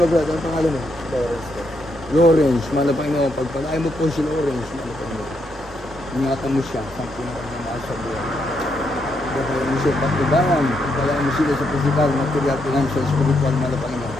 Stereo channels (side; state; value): both; normal; correlation 0.78